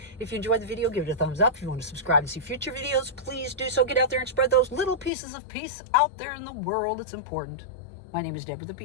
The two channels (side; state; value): right; drops out; at 5.1 s